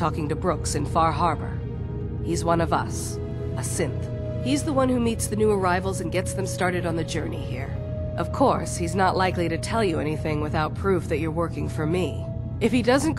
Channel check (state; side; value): identical; both; correlation 1.00